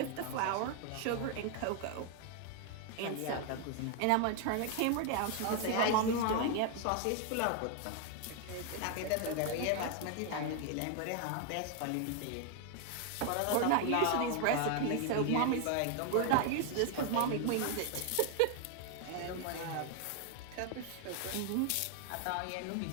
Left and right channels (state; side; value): different; both; correlation 0.00